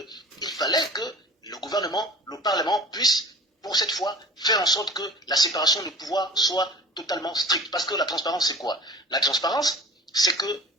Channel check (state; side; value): normal; both; correlation 0.41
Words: fallait que le gouvernement, le Parlement puisse, pour cette fois, faire en sorte que la séparation des pouvoirs soit totalement stricte. Parce que la transparence, c'est quoi? La transparence, c'est que